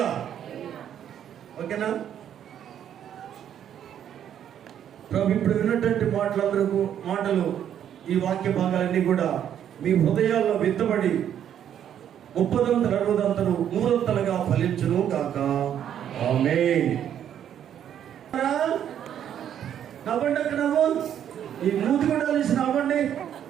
ఓకేనా? ప్రభు ఇప్పుడు విన్నటువంటి మాటలు ఈ వాక్య భాగాలన్నీ కూడా మీ హృదయాల్లో విత్తబడి 30 60 100 ఫలించును కాక. ఆమేన్. నవ్వండి. అక్కడ నవ్వు. ఈ మూతి కూడా కలిసి నవ్వండి.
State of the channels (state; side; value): quieter; left; 9.8 dB